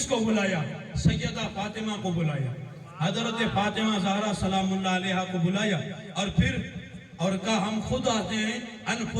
کو بلایا سیدہ فاطمہ کو بلایا حضرت فاطمہ زہرا سلام اللہ علیہا کو بلایا اور پھر اور کہا ہم خود آتے ہیں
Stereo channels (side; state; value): both; identical; correlation 1.00